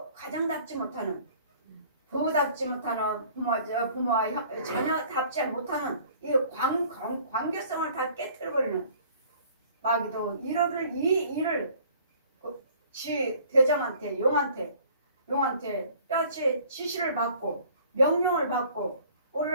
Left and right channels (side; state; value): both; inverted; correlation -0.53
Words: 가정답지 못하는 부부답지 못하는 부모와 자녀답지 못하는 이 관계성을 다 깨뜨려버리는 마귀도 이 일을 지 대장한테 용한테 뼈치 지시를 받고 명령을 받고